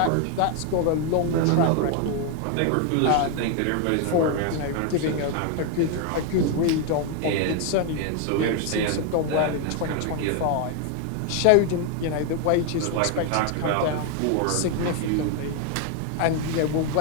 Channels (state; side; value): different; both; correlation 0.01